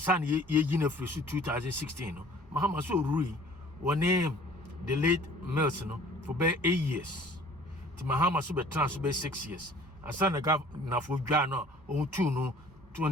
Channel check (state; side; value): normal; both; correlation 0.51